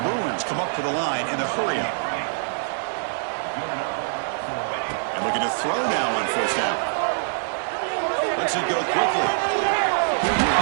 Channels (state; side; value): silent; left; digital silence